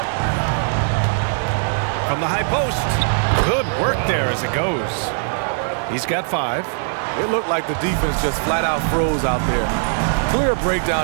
From the high post. Good work there as it goes. He's got 5. It looked like the defense just flat out froze out there. Clear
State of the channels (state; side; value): silent; left; digital silence